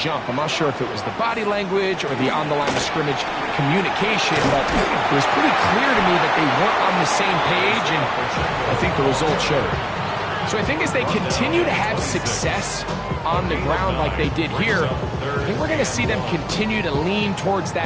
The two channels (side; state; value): both; identical; correlation 1.00